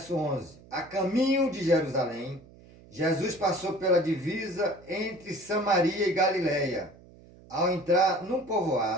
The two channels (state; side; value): noise; right; hum, 23 dB below the sound